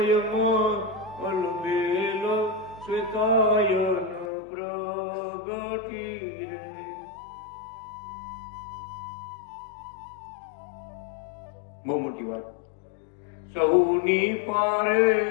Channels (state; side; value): drops out; right; at 4.3 s